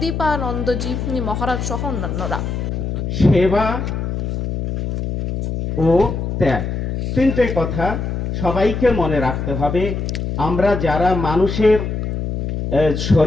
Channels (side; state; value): left; noise; hum, 3 dB below the sound